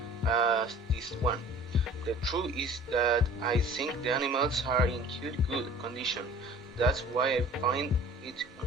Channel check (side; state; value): both; normal; correlation 0.47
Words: as this one. The truth is that I think the animals are in good condition. That's why I find it